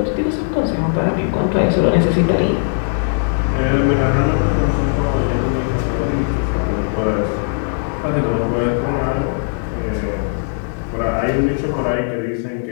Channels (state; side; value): silent; right; digital silence